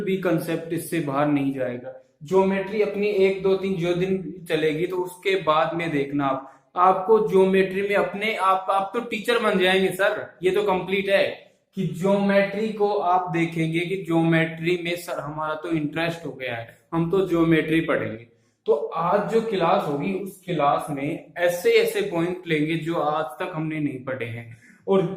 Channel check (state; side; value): identical; both; correlation 1.00